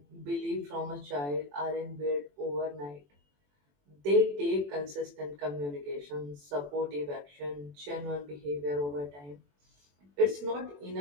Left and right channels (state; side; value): late; left; 21 ms